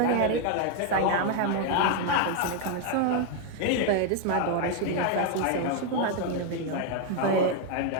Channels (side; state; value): both; different; correlation 0.01